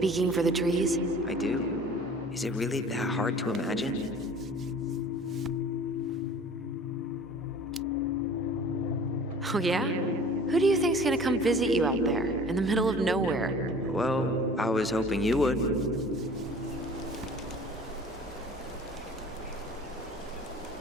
for the trees? I do. Is it really that hard to imagine? Oh yeah? Who do you think's gonna come visit you out there, in the middle of nowhere? Well, I was hoping you would.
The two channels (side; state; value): both; normal; correlation 0.46